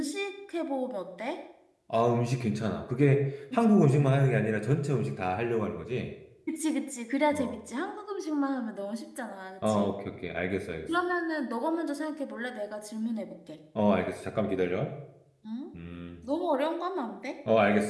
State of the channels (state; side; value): identical; both; correlation 1.00